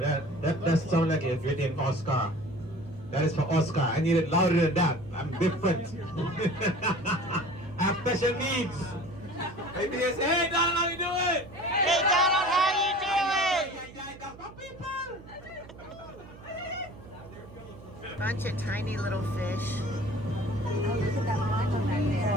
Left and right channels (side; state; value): right; noise; hum, 19 dB below the sound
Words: sounds like if you're named Oscar. That is for Oscar. I need it louder than that. I'm different. I have special needs. Maybe they say, hey Donald, how you doing? Hey, Donald, how you doing? Bunch of tiny little fish.